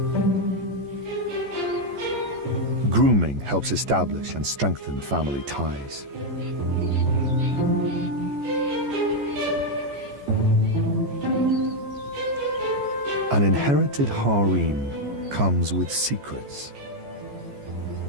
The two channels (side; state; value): left; late; 14 ms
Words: Grooming helps establish and strengthen family ties. An inherited harem comes with secrets.